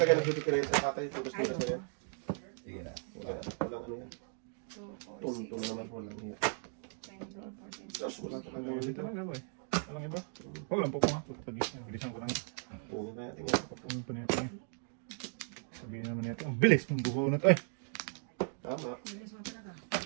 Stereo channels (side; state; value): left; silent; 53 dB below the other